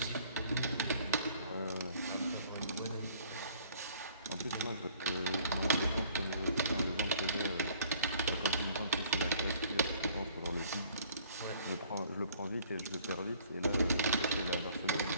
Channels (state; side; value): inverted; both; correlation -0.57